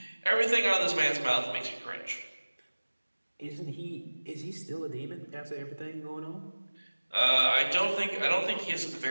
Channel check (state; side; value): inverted; both; correlation -1.00